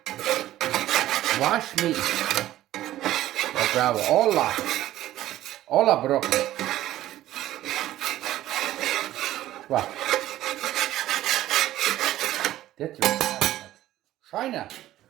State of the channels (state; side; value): quieter; left; 14.1 dB